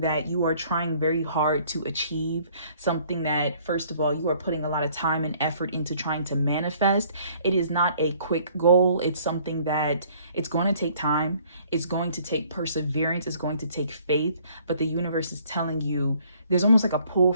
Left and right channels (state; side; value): inverted; both; correlation -0.59